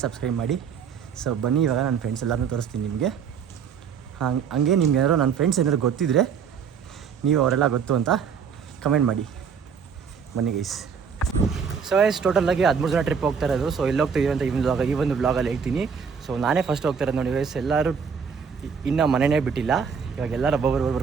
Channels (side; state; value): left; quieter; 6.6 dB